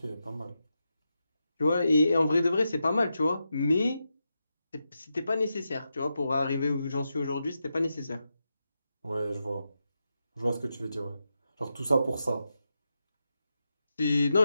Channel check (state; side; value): inverted; both; correlation -0.87